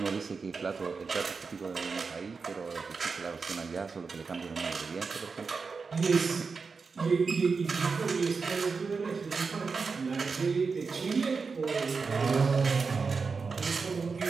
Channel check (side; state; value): left; quieter; 4.9 dB